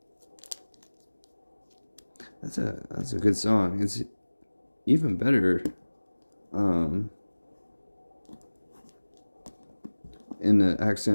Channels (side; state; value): both; inverted; correlation -1.00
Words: That's a good song. It's even better in the